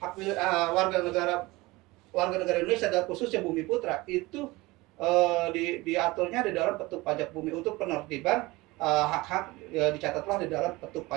warga negara Indonesia dan khususnya Bumi Putra itu diaturnya di dalam petuk pajak bumi. Untuk penertiban hak-hak dicatatlah di dalam petuk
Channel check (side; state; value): left; quieter; 21.4 dB